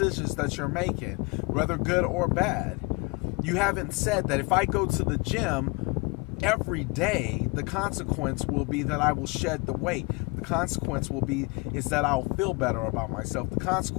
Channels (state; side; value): quieter; right; 28.9 dB